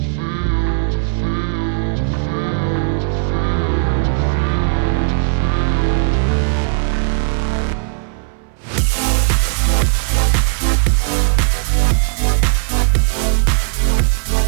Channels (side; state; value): left; silent; 62 dB below the other